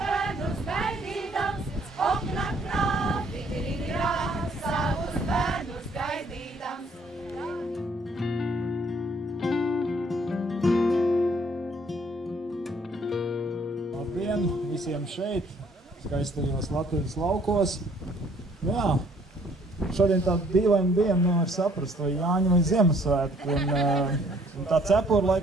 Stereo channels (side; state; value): both; normal; correlation 0.62